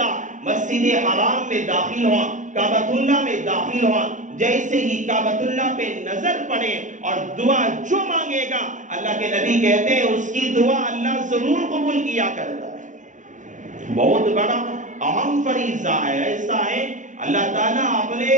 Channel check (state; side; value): late; left; 0.36 ms